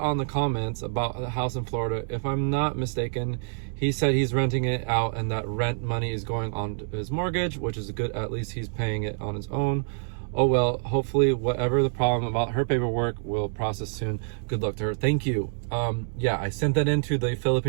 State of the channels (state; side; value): silent; left; 60 dB below the other